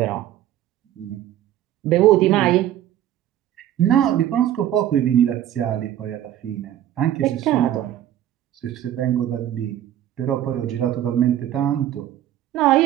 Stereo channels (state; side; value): quieter; left; 12.0 dB